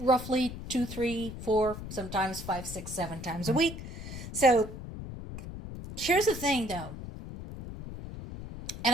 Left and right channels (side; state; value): left; noise; rumble, 10 dB below the sound